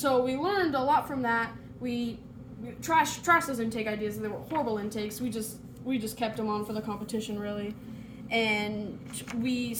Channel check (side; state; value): both; identical; correlation 1.00